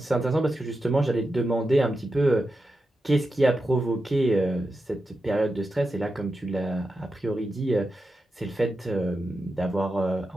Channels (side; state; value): both; normal; correlation 0.89